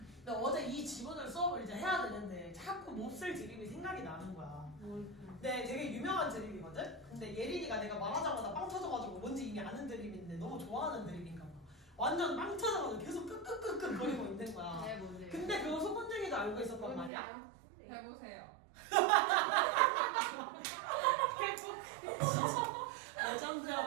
근데 어제 이 지문을 수업을 이제 해야 되는데 자꾸 몹쓸 드립이 생각이 나는 거야. 네, 되게 유명한 드립이거든? 근데 예린이가 내가 말하자마자 빵 터져가지고 뭔지 이미 아는 드립인데 너무 좋아하는 드립인가 봐. 완전 빵 터져가지고 계속 끄끄끄끄 거리고 있는 거야. 네 뭔데요? 근데 그거 소문쟁이도 알고 있었단 말이야. 뭔데요? 네. 해보세요.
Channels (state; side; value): drops out; left; at 17.1 s